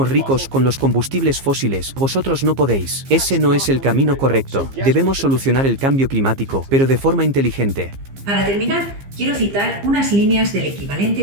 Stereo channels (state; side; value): late; left; 15 ms